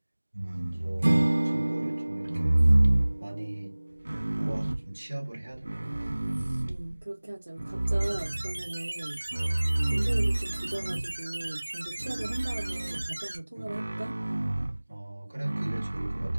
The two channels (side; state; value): both; inverted; correlation -1.00